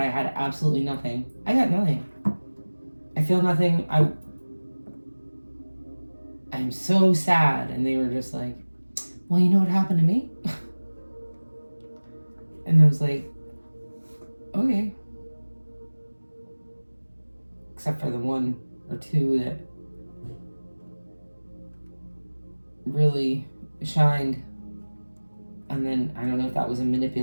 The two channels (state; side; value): inverted; both; correlation -1.00